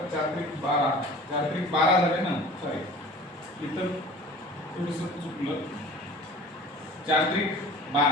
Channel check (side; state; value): both; normal; correlation 0.44